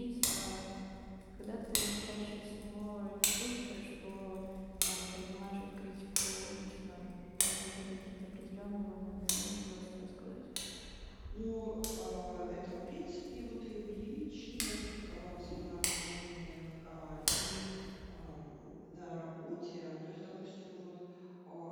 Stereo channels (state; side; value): identical; both; correlation 1.00